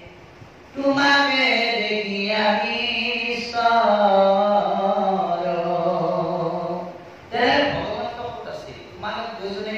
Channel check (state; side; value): identical; both; correlation 1.00